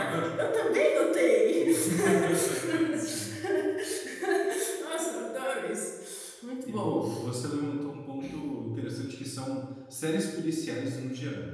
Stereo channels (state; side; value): identical; both; correlation 1.00